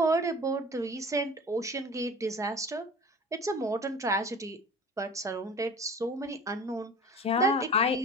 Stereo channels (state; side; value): normal; both; correlation 0.40